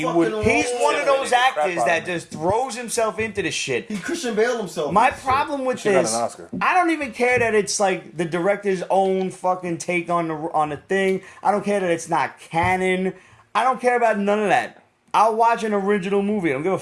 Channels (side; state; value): both; identical; correlation 1.00